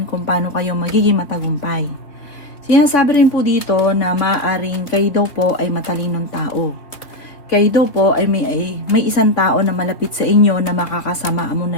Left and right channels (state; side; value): late; right; 2.9 ms